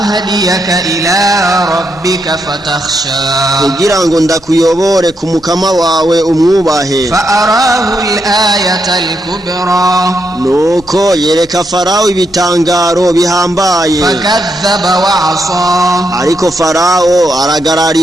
إلى ربك فتخشى kugira ngo ndakuyobore ku mukama wawe umwubahe فأراه الآية الكبرى nuko yereka farawo ibitangaro bihambaye فكذب وعصى ariko farawo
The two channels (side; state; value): both; normal; correlation 0.80